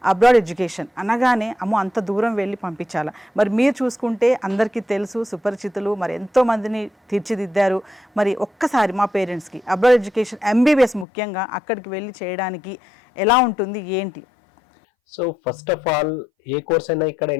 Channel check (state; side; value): drops out; right; at 11.1 s